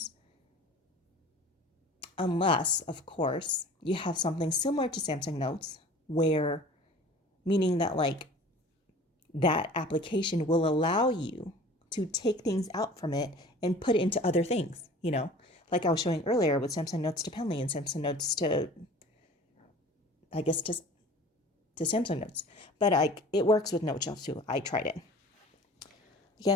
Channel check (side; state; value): both; normal; correlation 0.44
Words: Unless, of course, you have something similar to Samsung Notes, where meaning that like that application will allow you to take things out from it and put it into other things, like I was showing earlier with Samsung Notes to Penly and Samsung Notes to, I guess, to Samsung Notes. But it works with Note Shelf too. I tried it.